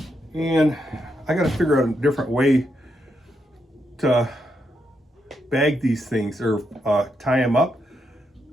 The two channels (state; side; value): normal; both; correlation 0.81